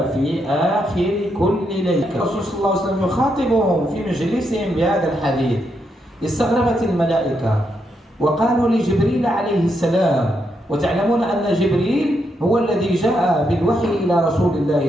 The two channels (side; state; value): both; normal; correlation 0.80